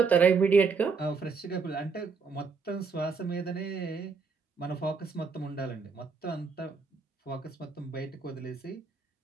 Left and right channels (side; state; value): left; quieter; 5.0 dB